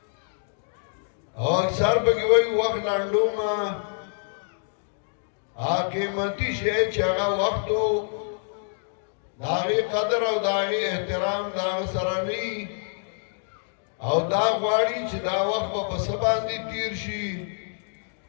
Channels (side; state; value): right; silent; digital silence